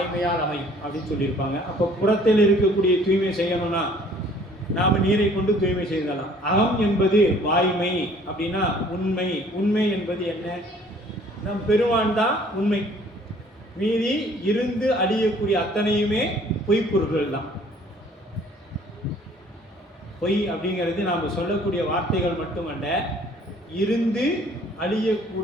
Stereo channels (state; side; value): normal; both; correlation 0.55